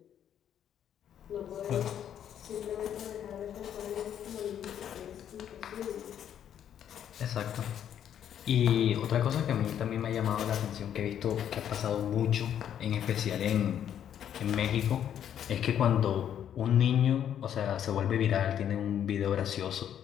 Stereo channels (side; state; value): right; quieter; 9.7 dB